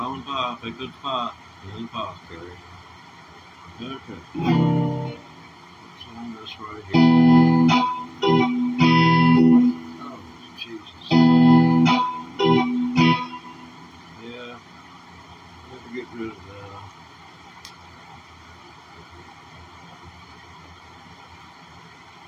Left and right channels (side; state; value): both; identical; correlation 1.00